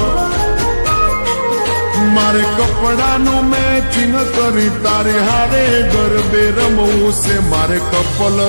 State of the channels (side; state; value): both; inverted; correlation -1.00